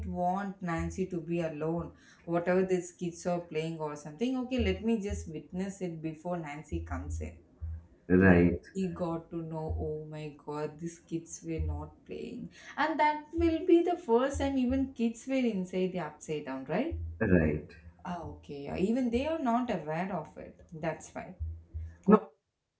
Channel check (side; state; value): both; identical; correlation 1.00